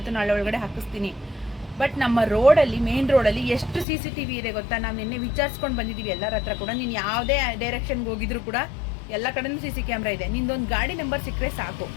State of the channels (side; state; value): right; drops out; at 3.9 s